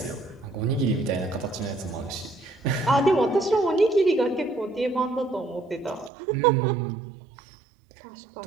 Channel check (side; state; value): left; drops out; at 6.1 s